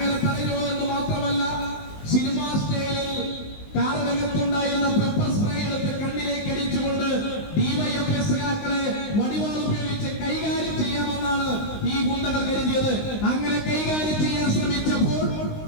തടയുക എന്ന് മാത്രമല്ല, സിനിമാ സ്റ്റൈലിൽ കാറിനകത്തുണ്ടായിരുന്ന പെപ്പർ സ്പ്രേ എടുത്ത് കണ്ണിലേക്ക് അടിച്ചുകൊണ്ട് ഡിവൈഎഫ്ഐ സഖാക്കളെ വടിവാൾ ഉപയോഗിച്ച് കൈകാര്യം ചെയ്യാമെന്നാണ് ഈ ഗുണ്ടകൾ കരുതിയത്. അങ്ങനെ കൈകാര്യം ചെയ്യാൻ ശ്രമിച്ചപ്പോൾ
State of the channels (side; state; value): right; late; 19 ms